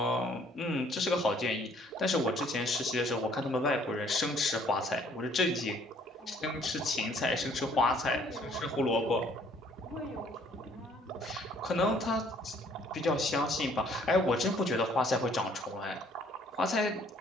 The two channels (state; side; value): normal; both; correlation 0.61